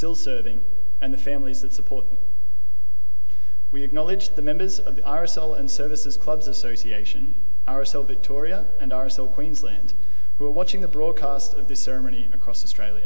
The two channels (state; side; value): inverted; both; correlation -1.00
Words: serving, and the families that support them. We acknowledge the members of the RSL and Services Clubs Association, RSL Victoria and RSL Queensland, who are watching the broadcast of this ceremony across